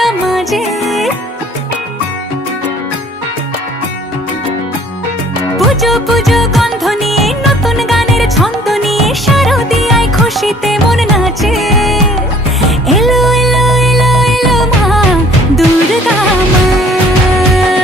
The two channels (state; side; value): normal; both; correlation 0.55